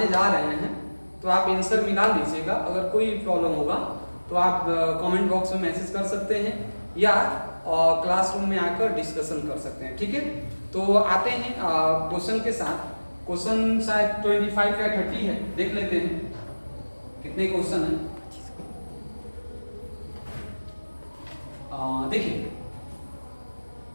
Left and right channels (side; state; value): both; inverted; correlation -1.00